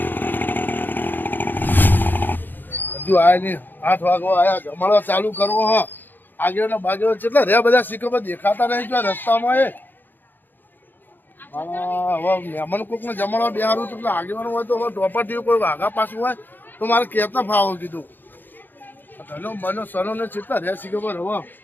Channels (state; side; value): late; right; 0.090 ms